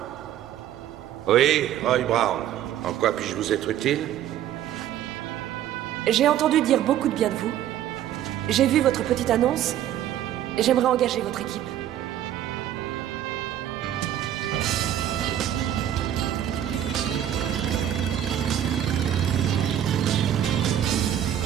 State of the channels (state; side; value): quieter; left; 11.1 dB